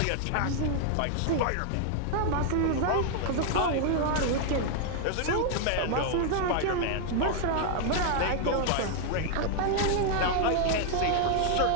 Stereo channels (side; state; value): both; different; correlation 0.00